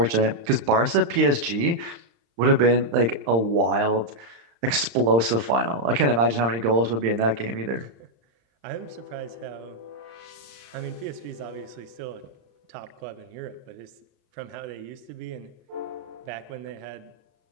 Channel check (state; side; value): late; left; 35 ms